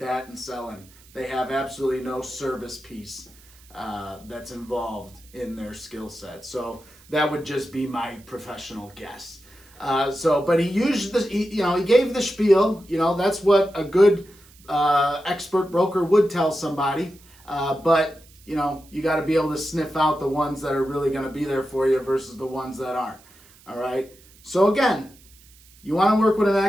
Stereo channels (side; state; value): right; noise; hiss, 26 dB below the sound